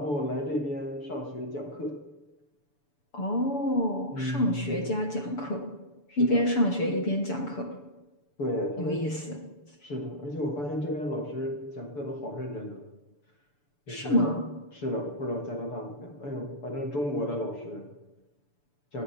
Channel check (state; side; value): late; right; 6.9 ms